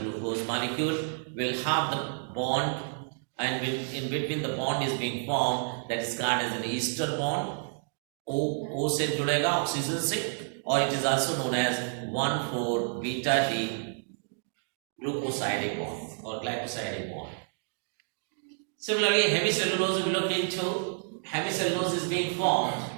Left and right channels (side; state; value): left; silent; digital silence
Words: glucose molecule will have the bond, and in between the bond is being formed, that is called as an ester bond. O से जुड़ेगा oxygen से, or it is also known as 1,4-beta-D glucosidic bond or glycosidic bond. Similarly, hemicellulose we look into. Hemicellulose is being formed